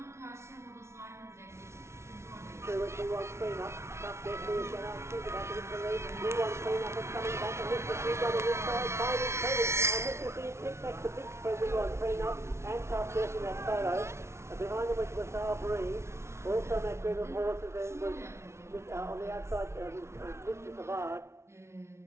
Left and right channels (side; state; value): left; late; 0.13 ms